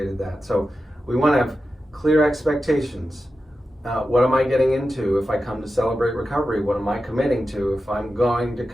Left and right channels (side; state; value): both; normal; correlation 0.91